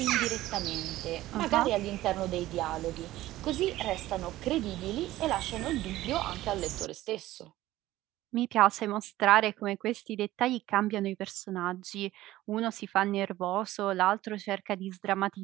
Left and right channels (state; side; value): quieter; left; 15.8 dB